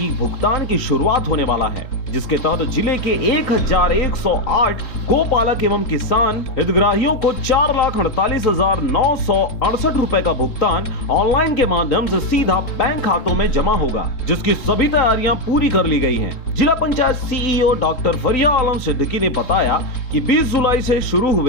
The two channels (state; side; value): late; right; 3.7 ms